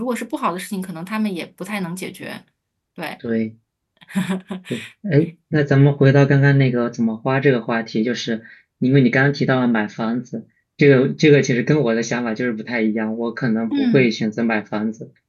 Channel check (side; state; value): both; identical; correlation 1.00